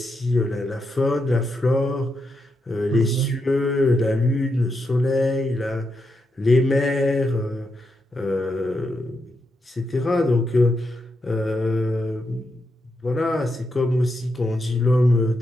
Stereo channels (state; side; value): normal; both; correlation 0.83